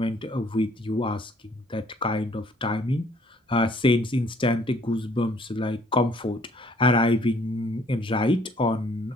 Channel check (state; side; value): normal; both; correlation 0.60